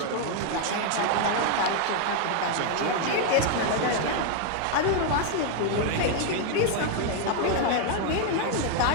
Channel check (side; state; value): both; different; correlation 0.00